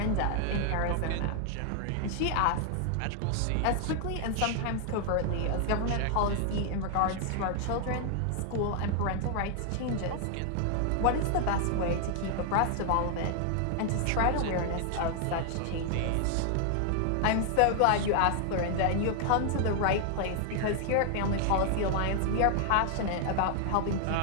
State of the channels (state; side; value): different; both; correlation 0.00